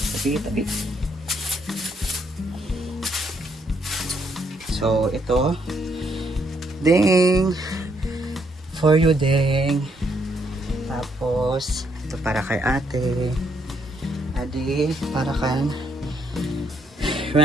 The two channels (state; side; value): normal; both; correlation 0.73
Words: Tabi. So, ito. Ding! For you, Ding. Tapos, ito para kay ate. Adi, para kan